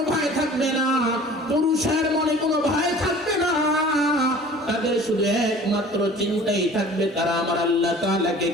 ভয় থাকবে না, পুরুষের মনে কোনো ভয় থাকবে না, তাদের শুধু একমাত্র চিন্তাই থাকবে তারা আমার আল্লাহ তাআলাকে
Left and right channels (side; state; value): both; normal; correlation 0.45